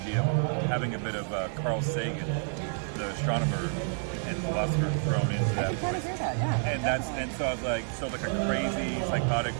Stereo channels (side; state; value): left; silent; 58 dB below the other